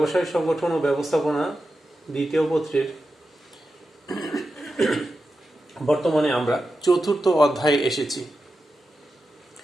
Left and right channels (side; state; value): both; normal; correlation 0.90